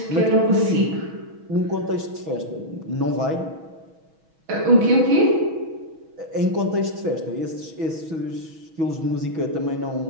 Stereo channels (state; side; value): late; left; 6.2 ms